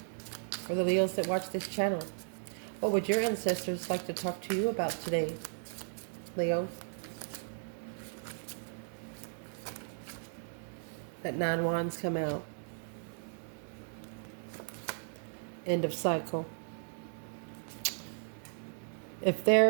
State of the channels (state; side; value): silent; left; digital silence